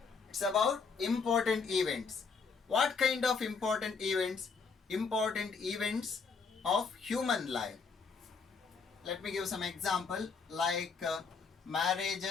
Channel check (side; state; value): right; quieter; 5.1 dB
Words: It's about important events. What kind of important events? Important events of human life. Let me give some example, like